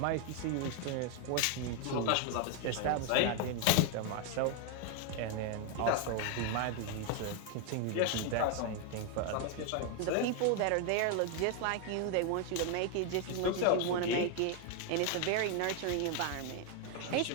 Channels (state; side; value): different; both; correlation 0.01